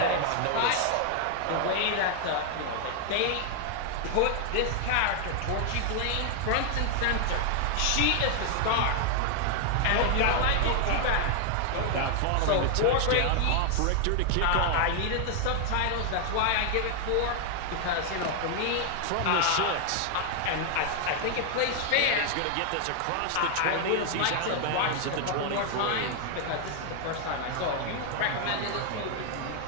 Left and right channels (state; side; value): different; both; correlation 0.00